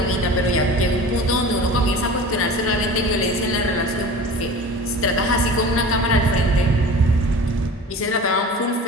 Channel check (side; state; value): both; normal; correlation 0.38